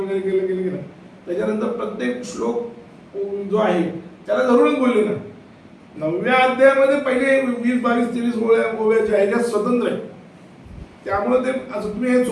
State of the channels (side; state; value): both; identical; correlation 1.00